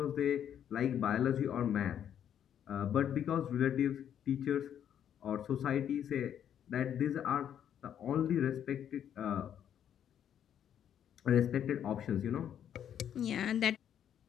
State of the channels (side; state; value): right; quieter; 9.5 dB